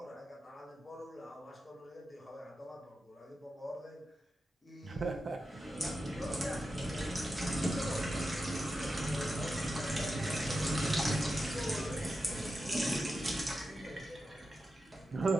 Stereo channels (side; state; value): both; normal; correlation 0.90